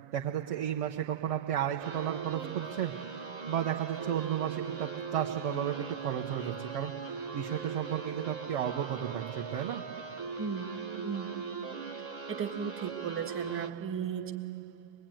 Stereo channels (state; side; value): quieter; left; 8.4 dB